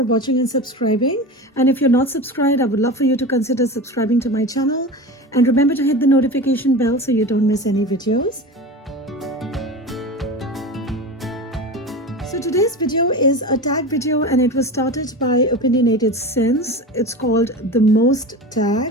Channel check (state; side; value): normal; both; correlation 0.29